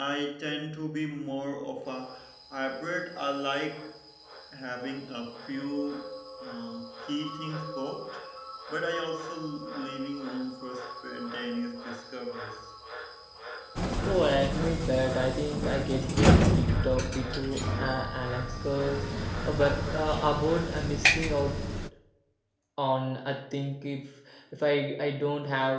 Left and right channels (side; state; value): both; identical; correlation 1.00